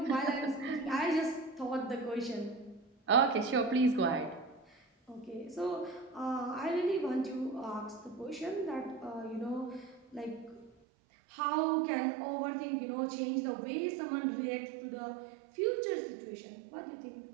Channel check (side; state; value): left; drops out; at 10.7 s